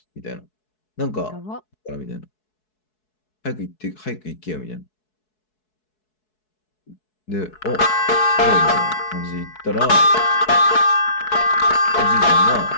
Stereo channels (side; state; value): right; late; 4.7 ms